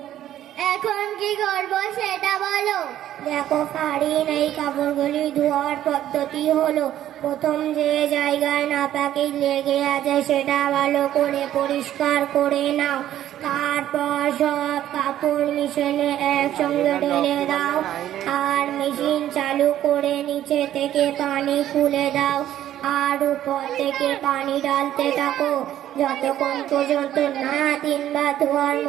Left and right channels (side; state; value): left; quieter; 12.1 dB